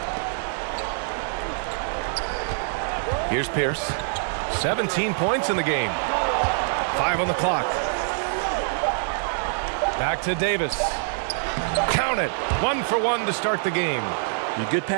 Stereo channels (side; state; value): left; silent; digital silence